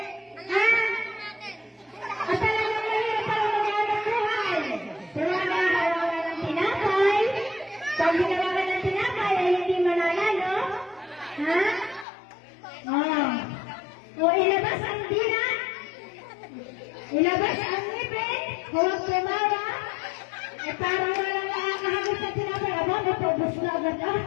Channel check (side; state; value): right; drops out; at 12.1 s